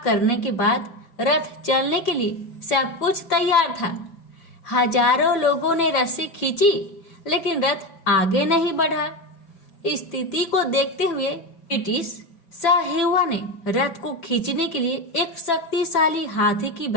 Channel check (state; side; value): late; right; 5.9 ms